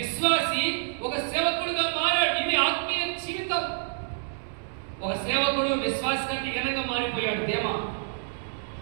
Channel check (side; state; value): left; silent; 60 dB below the other